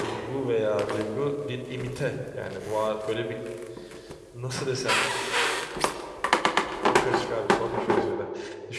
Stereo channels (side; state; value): both; identical; correlation 1.00